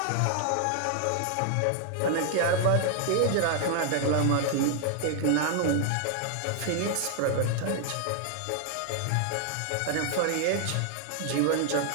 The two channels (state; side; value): different; both; correlation 0.00